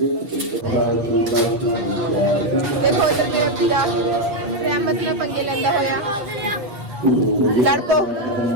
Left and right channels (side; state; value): left; late; 8.2 ms